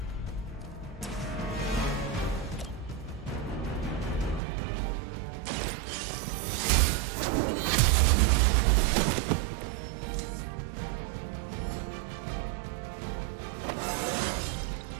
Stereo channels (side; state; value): left; drops out; at 4.4 s